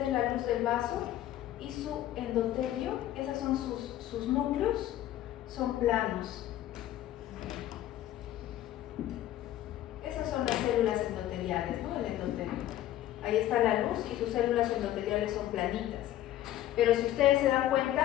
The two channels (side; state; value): right; quieter; 13.2 dB